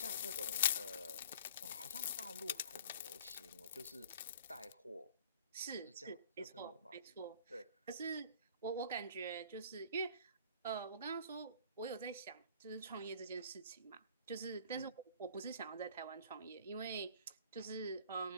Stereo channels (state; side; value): inverted; both; correlation -0.49